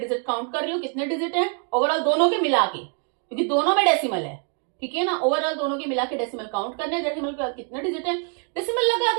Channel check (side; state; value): left; quieter; 39.8 dB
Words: काउंट कर रही हूँ, कितने डिजिट है ओवरऑल दोनों के मिला के, क्योंकि दोनों में डेसिमल है। ठीक है ना, ओवरऑल दोनों के मिला के डेसिमल काउंट करना है, डेसिमल के बाद कितने डिजिट है डेसिमल लगा